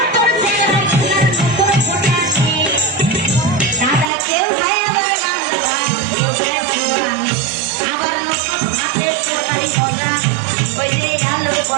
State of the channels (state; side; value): drops out; left; at 4.0 s